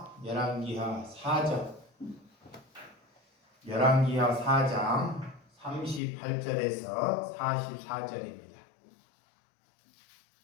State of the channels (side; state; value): right; drops out; at 6.0 s